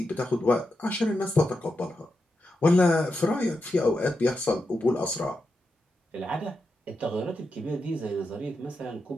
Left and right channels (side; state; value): both; normal; correlation 0.87